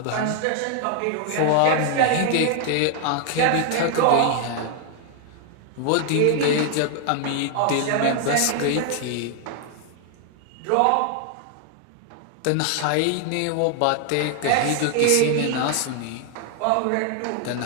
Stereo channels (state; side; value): different; both; correlation 0.00